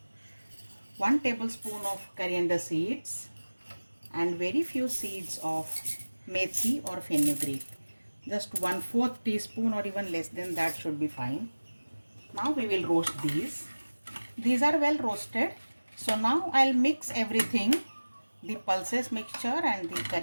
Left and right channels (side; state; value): both; inverted; correlation -1.00